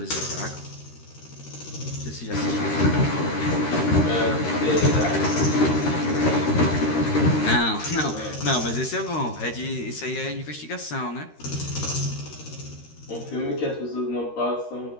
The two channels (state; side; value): late; right; 13 ms